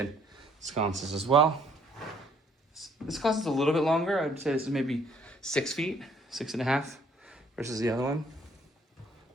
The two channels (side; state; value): both; normal; correlation 0.63